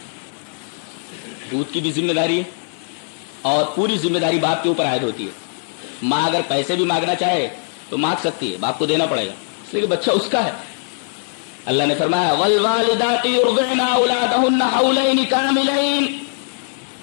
دودھ کی بھی ذمہ داری ہے, اور پوری ذمہ داری باپ کے اوپر عائد ہوتی ہے. ماں اگر پیسے بھی مانگنا چاہے تو مانگ سکتی ہے, باپ کو دینا پڑے گا, اس لیے کہ بچہ اس کا ہے. اللہ نے فرمایا والوالدات یرضعن اولادہن حولین کاملین,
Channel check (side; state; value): right; silent; 64 dB below the other